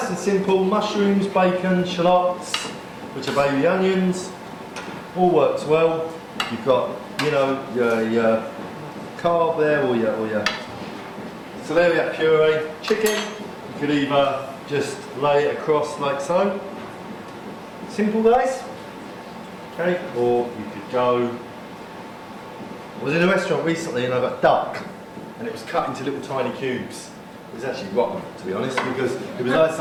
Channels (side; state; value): both; identical; correlation 1.00